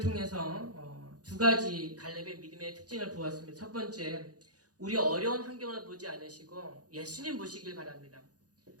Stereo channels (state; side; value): late; left; 0.68 ms